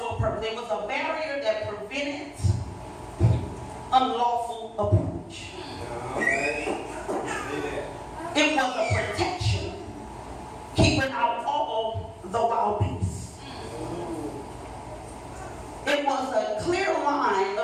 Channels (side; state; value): both; identical; correlation 1.00